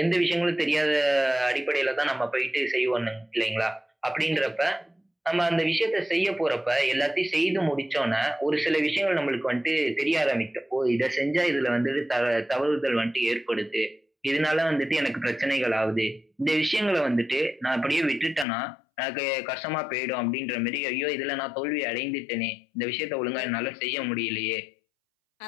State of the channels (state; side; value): drops out; right; at 18.4 s